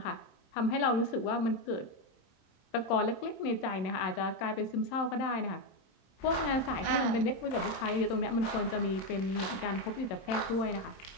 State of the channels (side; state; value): right; late; 27 ms